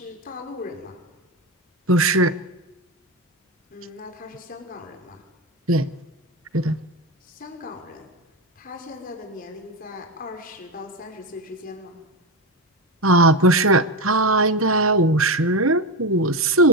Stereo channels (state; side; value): normal; both; correlation 0.14